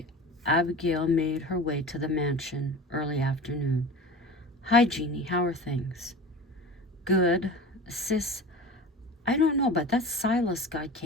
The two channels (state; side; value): normal; both; correlation 0.34